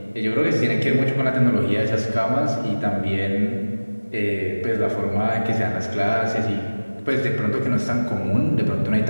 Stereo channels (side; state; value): both; inverted; correlation -1.00